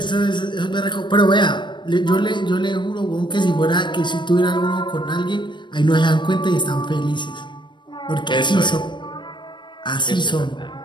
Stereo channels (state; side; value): late; right; 0.22 ms